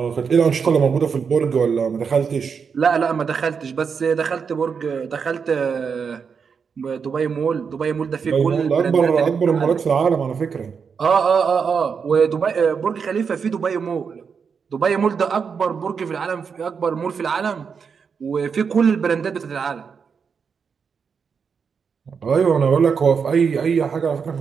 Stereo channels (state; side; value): quieter; left; 6.1 dB